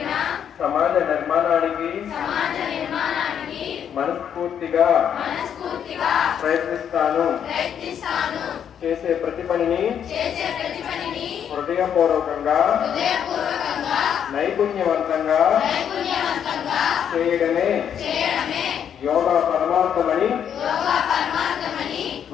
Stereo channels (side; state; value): right; quieter; 8.7 dB